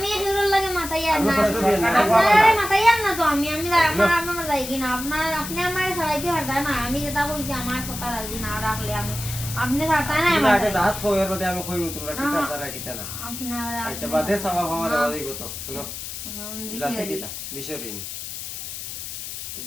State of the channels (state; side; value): noise; left; hiss, 8 dB below the sound